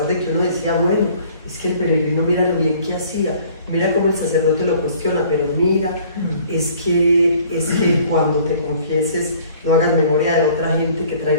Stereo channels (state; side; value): inverted; both; correlation -0.54